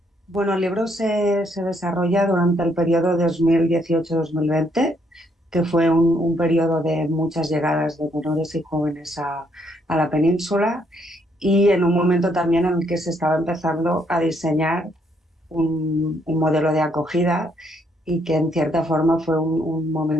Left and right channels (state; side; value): normal; both; correlation 0.71